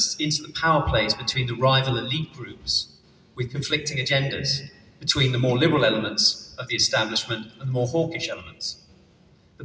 into the power plays between the rival elite groups with conflicting agendas, between the more liberal elements of the establishment and the more hawkish elements. The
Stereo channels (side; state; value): both; identical; correlation 1.00